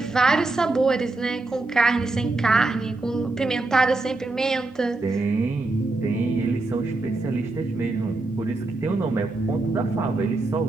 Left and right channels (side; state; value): left; quieter; 3.2 dB